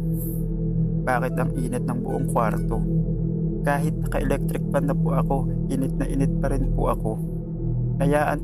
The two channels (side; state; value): both; identical; correlation 1.00